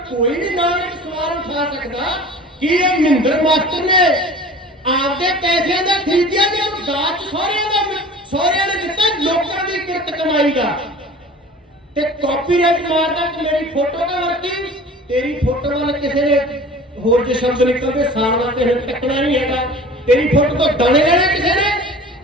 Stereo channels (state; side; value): normal; both; correlation 0.42